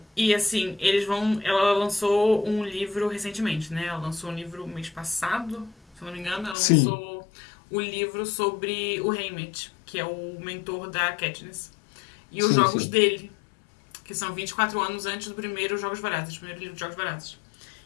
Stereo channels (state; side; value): drops out; right; at 6.6 s